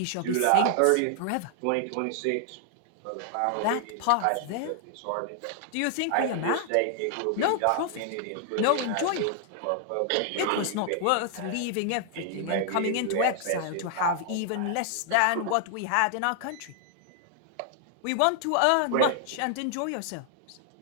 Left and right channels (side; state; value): both; different; correlation 0.00